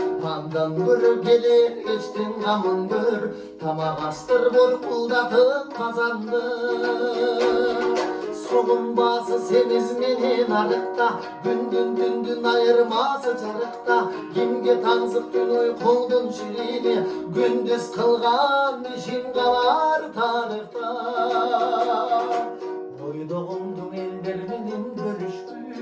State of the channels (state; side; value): identical; both; correlation 1.00